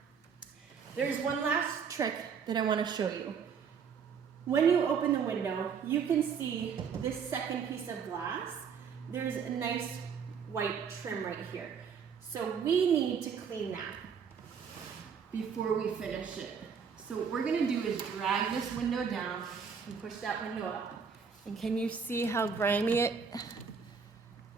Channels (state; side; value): quieter; left; 6.5 dB